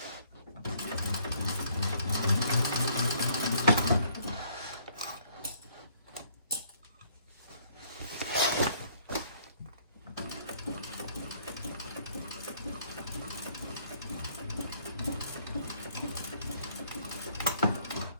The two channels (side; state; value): both; inverted; correlation -0.63